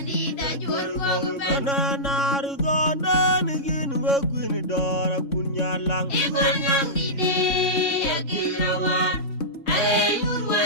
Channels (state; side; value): late; right; 3.6 ms